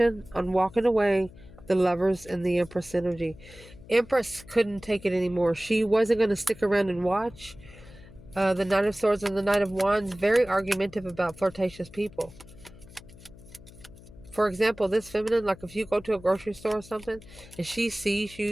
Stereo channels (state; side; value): noise; left; hum, 20 dB below the sound